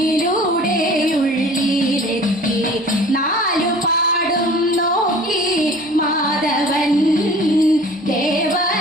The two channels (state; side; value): normal; both; correlation 0.45